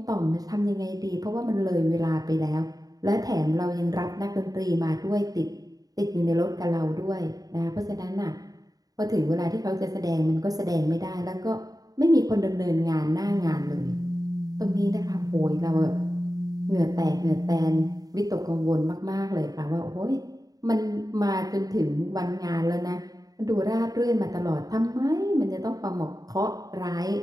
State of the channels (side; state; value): left; late; 0.18 ms